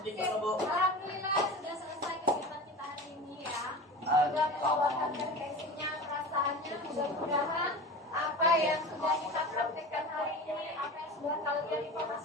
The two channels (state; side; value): normal; both; correlation 0.32